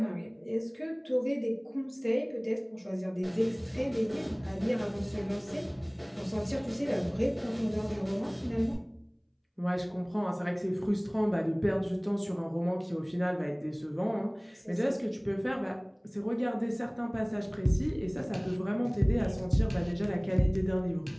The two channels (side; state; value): both; identical; correlation 1.00